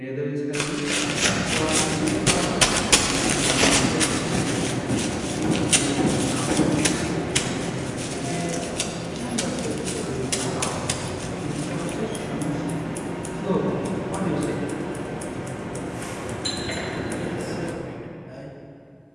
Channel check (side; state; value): both; identical; correlation 1.00